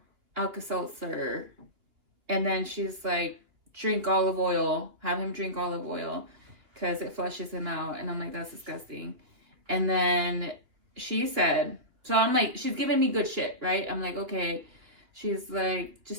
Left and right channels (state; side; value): late; left; 2.8 ms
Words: Alka-Seltzer. And then she's like, drink olive oil. Have him drink olive oil because it flushes him out. And I'm like, that's disgusting. And then she said, so I'm like, she's giving me good shit, right? I'm like, okay. She's like,